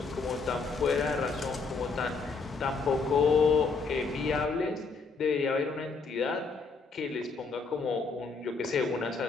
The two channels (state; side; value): quieter; right; 4.5 dB